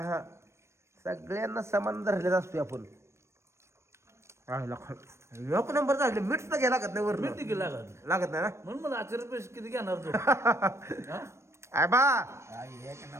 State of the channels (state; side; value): late; left; 0.13 ms